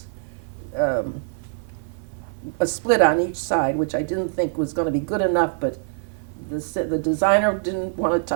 a split on each side, which I didn't think was going to be good enough, but the designer didn't want to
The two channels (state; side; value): silent; left; 55 dB below the other